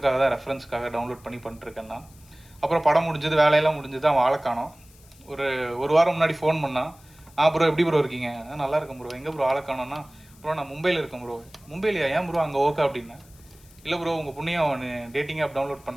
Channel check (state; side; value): noise; left; hiss, 26 dB below the sound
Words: தான் ரெஃபரன்ஸ்க்காக டவுன்லோட் பண்ணிட்டுருக்கேன்னா. அப்புறம் படம் முடிஞ்சது, வேலையெல்லாம் முடிஞ்சது, அவன் ஆளை காணோம். ஒரு வாரம் முன்னாடி ஃபோன் பண்ணான். ப்ரோ எப்படி ப்ரோ இருக்கீங்க? நல்லா இருக்கேன் ப்ரோ. எங்கே ப்ரோ ஆளை காணோன்னா, ப்ரோ நான் மும்பையில் இருக்கேன் ப்ரோ. மும்பையிலையா? ஏன் ப்ரோ அங்கே ஓகே அப்படின்னேன். இல்லை ப்ரோ உங்கள் புண்ணியம் டேட்டிங் ஆப் டவுன்லோட்